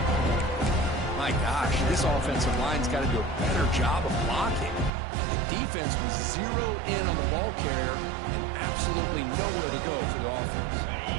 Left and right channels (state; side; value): drops out; left; at 4.9 s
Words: My gosh, this offensive line's got to do a better job of blocking. The defense was zeroed in on the ball carrier and absolutely nowhere to go for the offense.